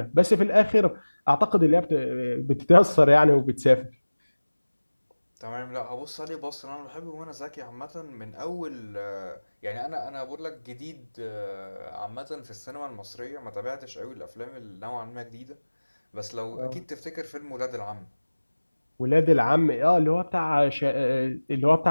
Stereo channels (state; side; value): inverted; both; correlation -1.00